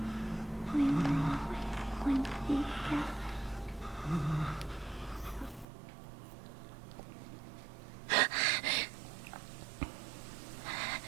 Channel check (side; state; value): left; drops out; at 5.7 s